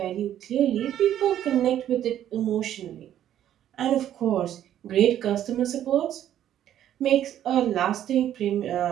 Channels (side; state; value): left; quieter; 11.2 dB